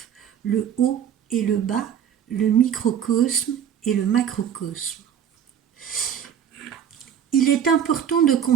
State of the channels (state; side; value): quieter; left; 8.8 dB